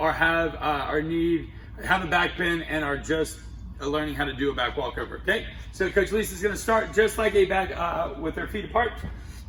have a back bend and are just learning how to do a back walkover. Okay, so Coach Lisa's gonna start just like a back with her feet apart.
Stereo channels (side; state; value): both; identical; correlation 1.00